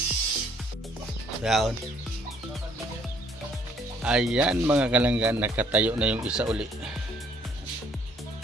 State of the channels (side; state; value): both; normal; correlation 0.64